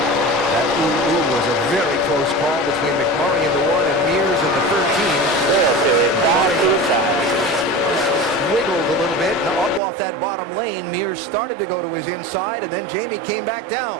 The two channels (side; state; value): left; drops out; at 9.8 s